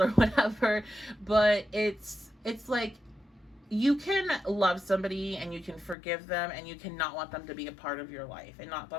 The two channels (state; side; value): drops out; right; at 6.0 s